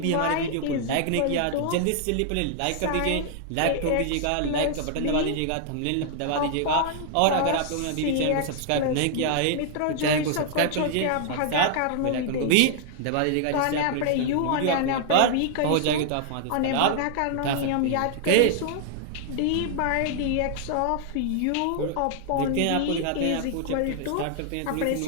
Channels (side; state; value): both; different; correlation -0.01